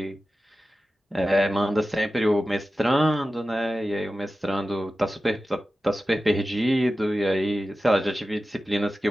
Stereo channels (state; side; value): normal; both; correlation 0.94